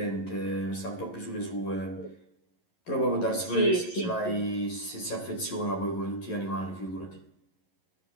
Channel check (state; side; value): late; right; 11 ms